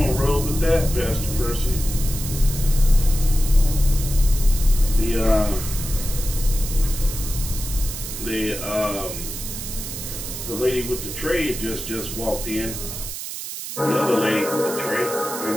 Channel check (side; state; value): right; noise; hiss, 8 dB below the sound